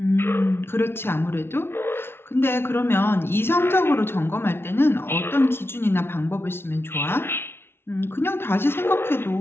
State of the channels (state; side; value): late; right; 0.12 ms